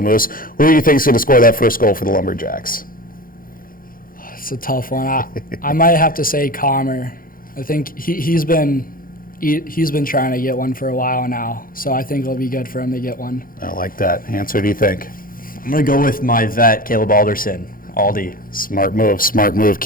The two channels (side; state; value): right; late; 0.41 ms